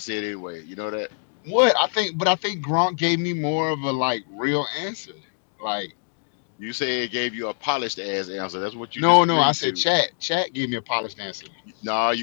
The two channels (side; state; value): right; silent; digital silence